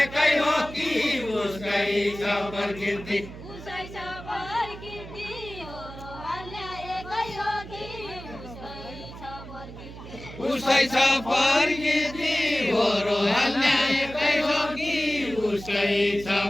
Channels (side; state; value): right; noise; hum, 14 dB below the sound